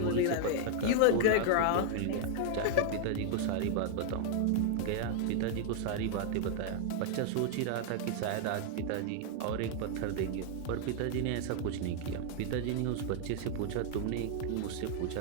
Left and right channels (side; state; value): both; different; correlation 0.00